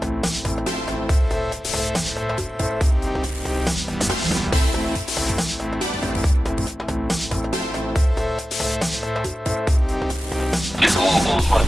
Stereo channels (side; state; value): both; normal; correlation 0.94